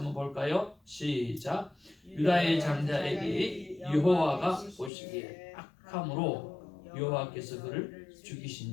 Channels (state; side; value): drops out; right; at 4.9 s